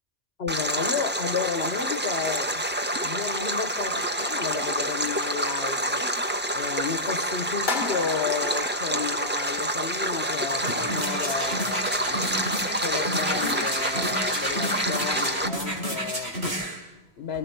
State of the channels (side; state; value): both; normal; correlation -0.10